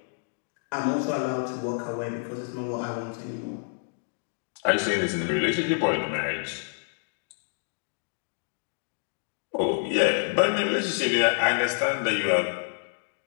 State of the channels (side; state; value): right; silent; digital silence